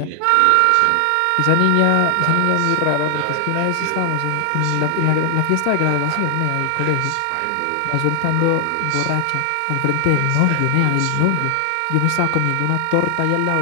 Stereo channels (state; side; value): different; both; correlation 0.00